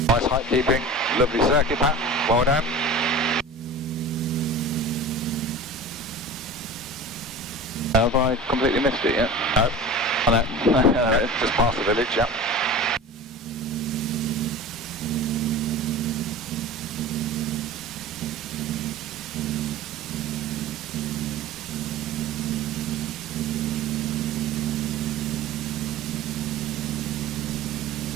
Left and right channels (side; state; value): both; normal; correlation 0.34